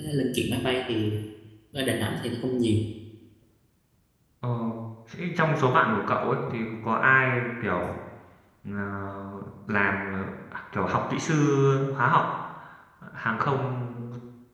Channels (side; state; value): both; identical; correlation 1.00